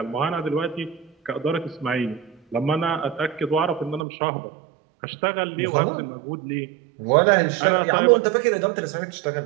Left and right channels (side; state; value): left; drops out; at 4.0 s